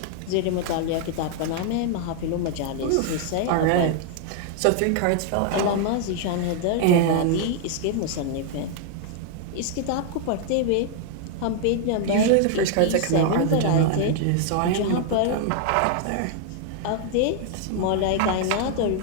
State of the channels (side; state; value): both; different; correlation 0.00